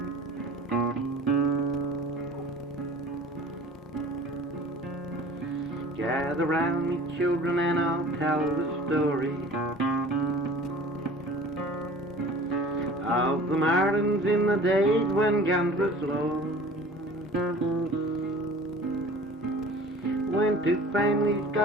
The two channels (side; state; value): both; normal; correlation 0.44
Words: Gather round me, children, and I'll tell the story of the mountains in the days when guns were slow. When two families